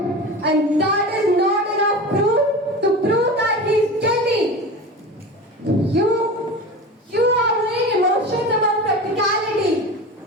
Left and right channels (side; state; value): both; normal; correlation 0.31